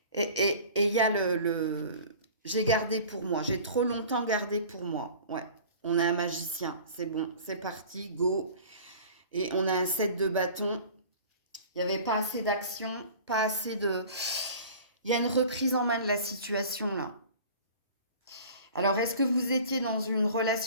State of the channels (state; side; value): inverted; both; correlation -0.43